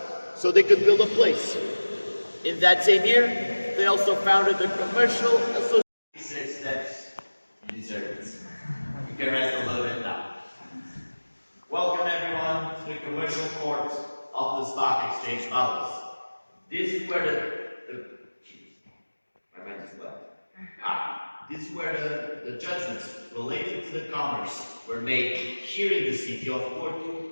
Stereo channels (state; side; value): inverted; both; correlation -1.00